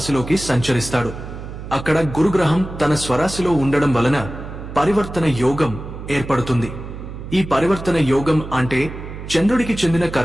సంచరిస్తాడు. అక్కడ గురుగ్రహం తన స్వరాశిలో ఉండడం వలన పరివర్తన యోగం ఏర్పడుతుంది. ఈ పరివర్తన యోగం అంటే చంద్రుడికి చెందిన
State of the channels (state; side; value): noise; right; hum, 10 dB below the sound